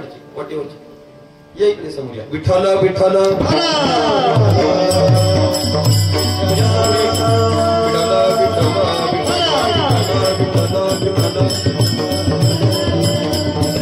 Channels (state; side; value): identical; both; correlation 1.00